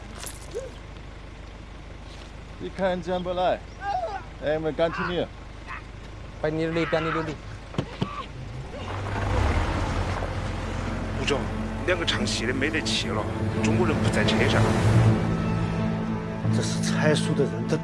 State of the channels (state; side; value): identical; both; correlation 1.00